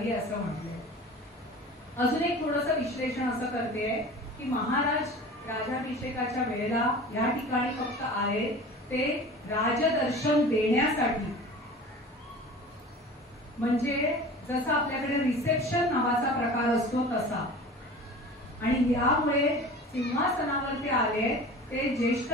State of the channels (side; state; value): both; normal; correlation 0.39